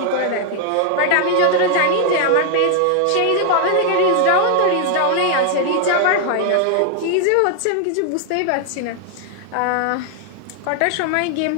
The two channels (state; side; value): different; both; correlation 0.00